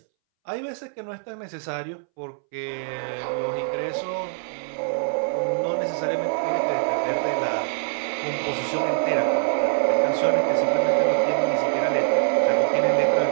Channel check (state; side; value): silent; left; 63 dB below the other